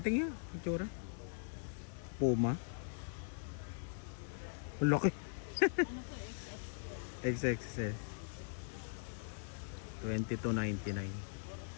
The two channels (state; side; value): silent; right; 51 dB below the other